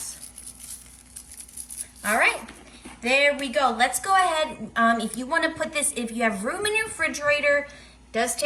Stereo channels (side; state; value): both; identical; correlation 1.00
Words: All right, there we go. Let's go ahead. If you want to put this, if you have room in your refrigerator, it does